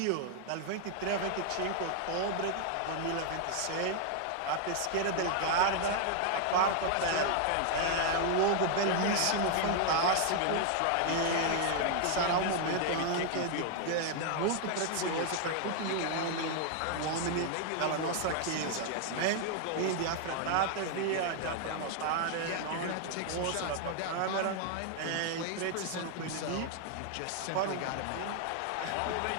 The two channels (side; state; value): both; different; correlation 0.00